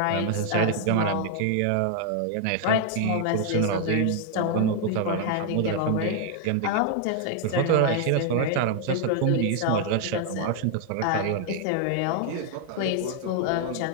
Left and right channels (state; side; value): different; both; correlation 0.00